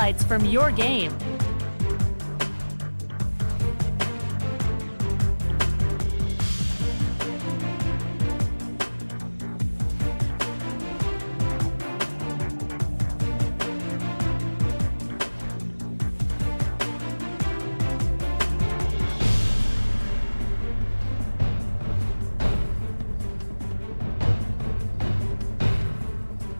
from your game.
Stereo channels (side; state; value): both; inverted; correlation -1.00